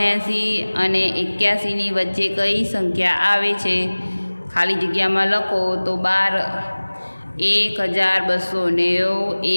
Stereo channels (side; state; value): both; inverted; correlation -1.00